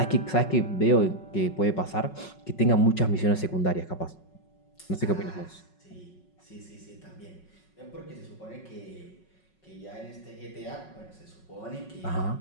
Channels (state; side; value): late; right; 5.4 ms